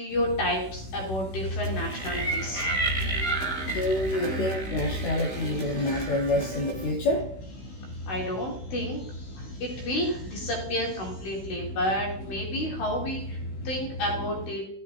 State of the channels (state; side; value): late; right; 16 ms